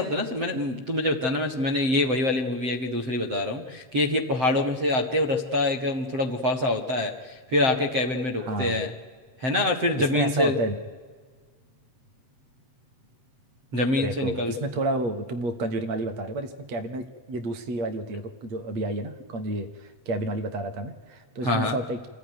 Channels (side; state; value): left; late; 7.8 ms